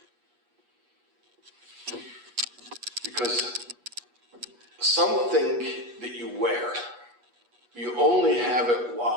Because something that you wear, you only have it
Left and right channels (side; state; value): left; late; 8.3 ms